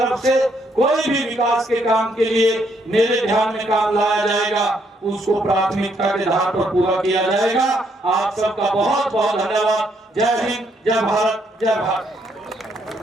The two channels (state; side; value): normal; both; correlation 0.73